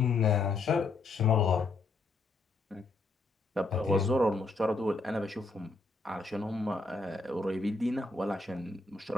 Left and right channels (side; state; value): right; quieter; 3.6 dB